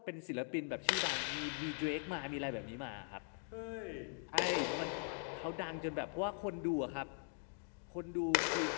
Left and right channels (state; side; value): silent; right; 50 dB below the other